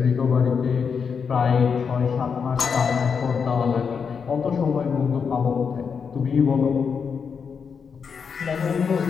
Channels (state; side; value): quieter; right; 6.2 dB